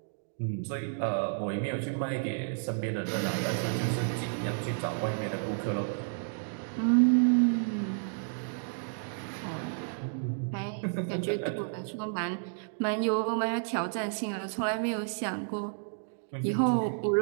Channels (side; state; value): left; silent; digital silence